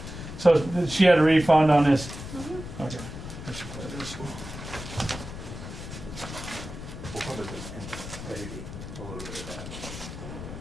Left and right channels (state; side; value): noise; left; rumble, 10 dB below the sound